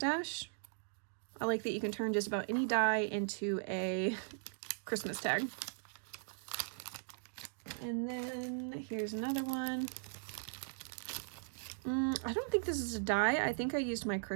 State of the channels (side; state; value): left; silent; digital silence